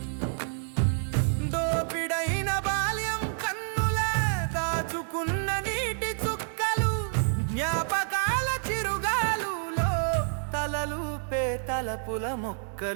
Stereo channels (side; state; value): left; silent; digital silence